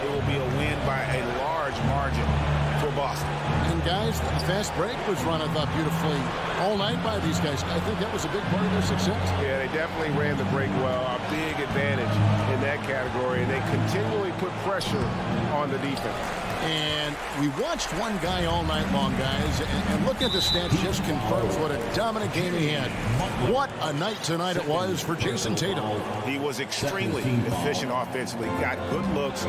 it will be a win by a large margin for Boston. And guys, the fast break was run, I thought, beautifully all night by these guys. I think that was a big part of their success. Yeah, they definitely ran the break well. A big advantage in that category. And they continually put pressure on the defense. And we watched one guy all night long, guys, and look at the stats, just confirms what a dominant game he had. What a night tonight it was for Jason Tatum. He was extremely efficient offensively, got good looks,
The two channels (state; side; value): identical; both; correlation 1.00